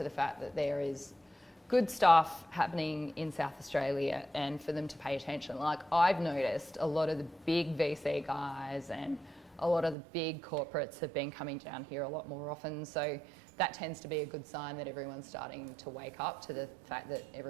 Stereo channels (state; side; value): drops out; left; at 10.0 s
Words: the fact that there is good stuff happening in South Australia and for them to pay attention. Like I've noticed a lot of the big VC guys and a lot of the big corporates have been coming down here a lot more often, so that tends to be a good sign that everyone's starting to wake up to the fact that